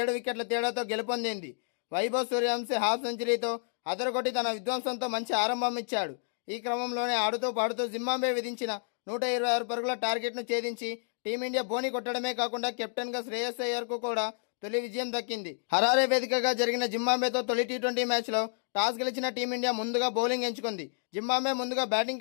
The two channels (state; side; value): silent; right; digital silence